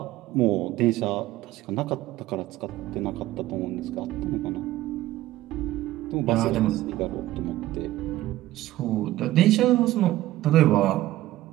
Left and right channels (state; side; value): quieter; left; 15.6 dB